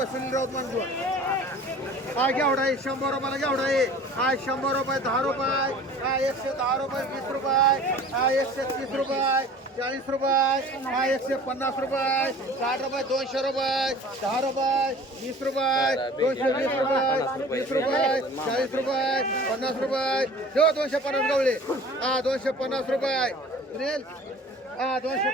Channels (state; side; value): normal; both; correlation 0.45